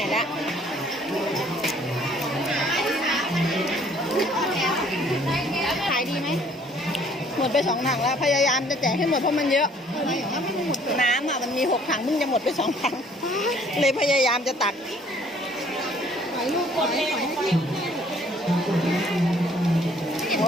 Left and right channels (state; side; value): normal; both; correlation 0.59